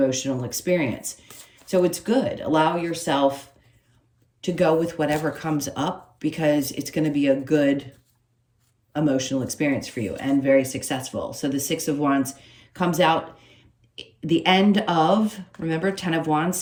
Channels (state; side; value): identical; both; correlation 1.00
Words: experience. So it's good. Allow yourself to go with whatever comes up because it's going to be a good emotional experience for you and very successful. So the 6 of Wands comes out the end of, remember, 10 of Wands,